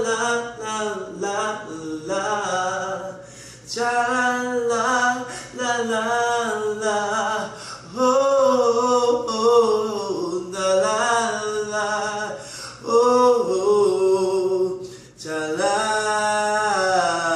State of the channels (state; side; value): identical; both; correlation 1.00